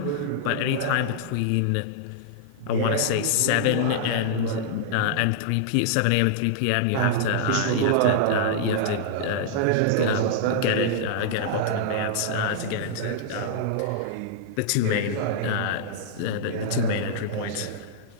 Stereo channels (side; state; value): both; different; correlation -0.01